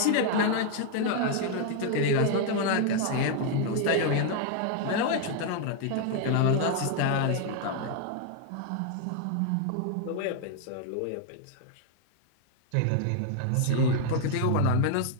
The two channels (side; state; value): both; different; correlation 0.00